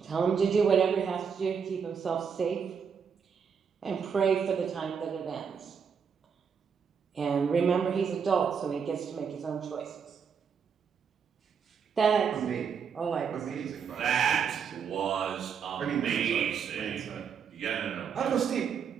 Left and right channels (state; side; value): quieter; left; 6.7 dB